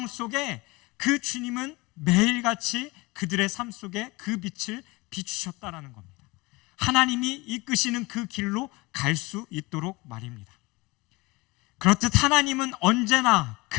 속에 그 주님은 매일같이 그들의 삶 속에 그 빛을 비추셨다라는 겁니다. 하나님이 이끄시는 그 길로 갈 수 있도록 말입니다. 그렇듯 하나님은 언제나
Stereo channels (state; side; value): quieter; right; 23.7 dB